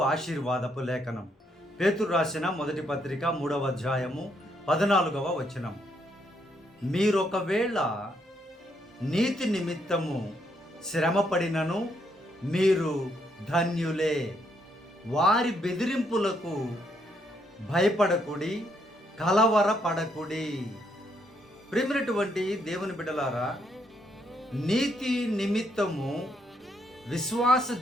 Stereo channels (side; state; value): both; normal; correlation 0.74